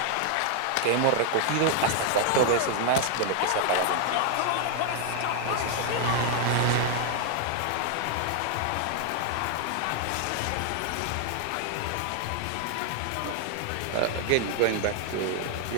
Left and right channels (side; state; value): both; different; correlation 0.00